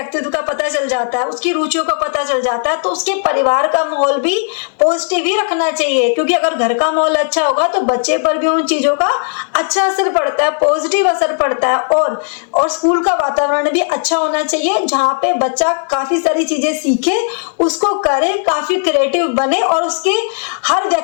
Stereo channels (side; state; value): right; silent; digital silence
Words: का पता चल जाता है, उसकी रुचियों का पता चल जाता है, तो उसके परिवार का माहौल भी पॉजिटिव ही रखना चाहिए, क्योंकि अगर घर का माहौल अच्छा होगा तो बच्चे पर भी उन चीजों का अच्छा असर पड़ता है, पॉजिटिव असर पड़ता है। और स्कूल का वातावरण भी अच्छा होना चाहिए जहाँ पे बच्चा काफी सारी चीजें सीखे, उसको करे, काफी क्रिएटिव बने और उसके हर